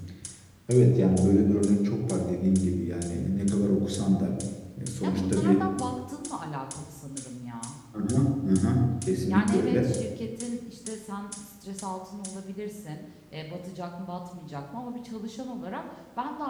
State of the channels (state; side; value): identical; both; correlation 1.00